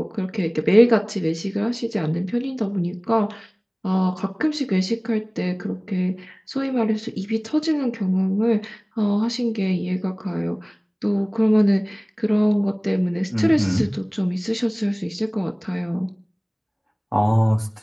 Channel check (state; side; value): identical; both; correlation 1.00